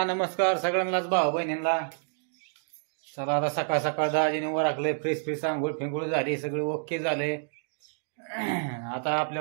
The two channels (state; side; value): silent; left; digital silence